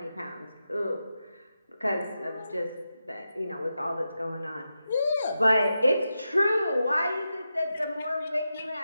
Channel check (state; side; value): inverted; both; correlation -0.89